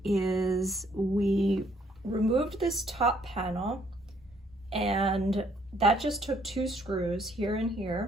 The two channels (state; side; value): normal; both; correlation 0.66